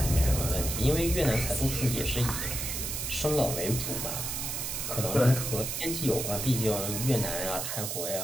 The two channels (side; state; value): right; noise; hiss, 3 dB below the sound